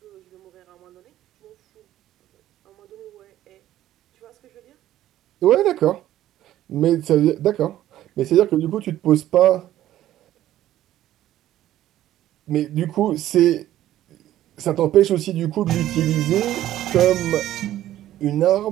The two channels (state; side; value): quieter; left; 13.2 dB